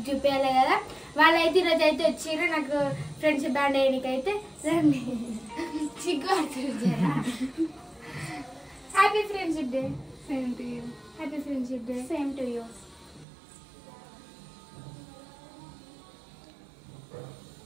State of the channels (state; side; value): drops out; left; at 13.2 s